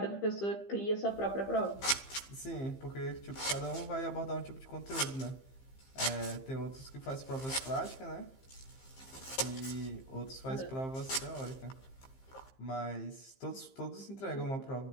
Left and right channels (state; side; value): late; right; 15 ms